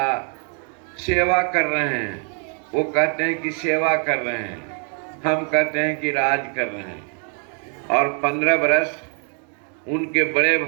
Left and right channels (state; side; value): quieter; left; 39.7 dB